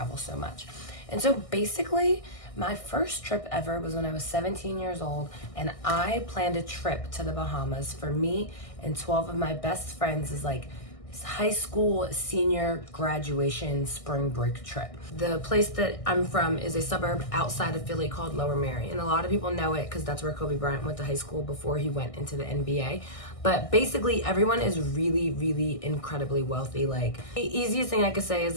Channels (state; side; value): late; right; 1.6 ms